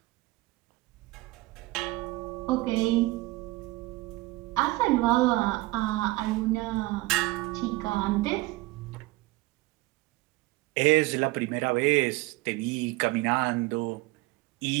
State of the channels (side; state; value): left; quieter; 20.7 dB